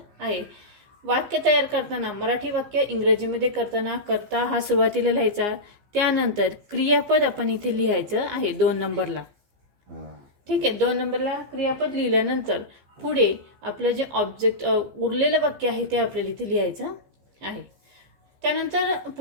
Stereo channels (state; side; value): late; left; 15 ms